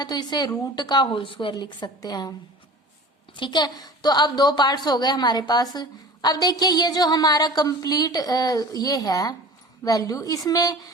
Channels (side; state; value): both; normal; correlation 0.40